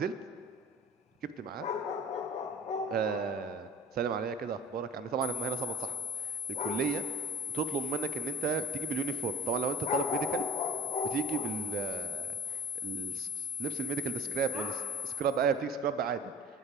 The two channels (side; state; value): both; normal; correlation 0.41